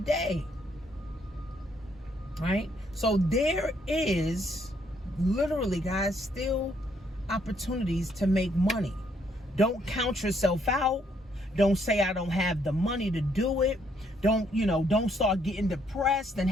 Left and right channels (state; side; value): normal; both; correlation 0.70